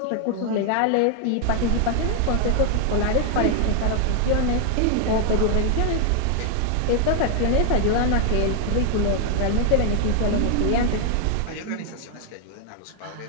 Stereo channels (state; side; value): different; both; correlation 0.00